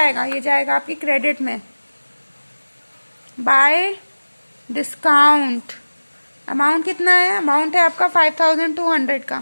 ये जाएगा आपकी क्रेडिट में। बाय डिस्काउंट अमाउंट कितना है, अमाउंट है आपका 5200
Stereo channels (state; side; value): inverted; both; correlation -1.00